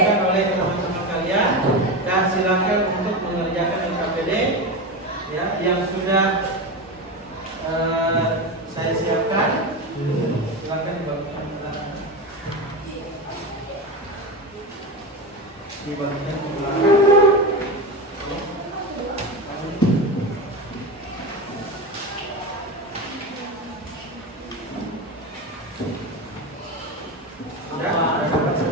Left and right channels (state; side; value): normal; both; correlation 0.20